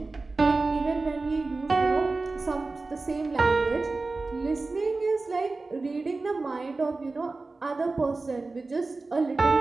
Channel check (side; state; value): left; quieter; 3.6 dB